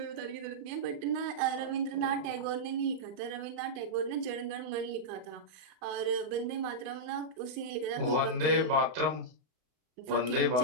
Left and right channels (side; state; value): left; late; 32 ms